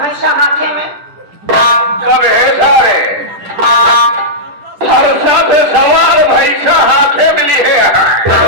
भैंसा हाथे में। कब है सारे हर्षा पे सवार भैंसा हाथे मिली है।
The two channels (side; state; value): left; late; 10 ms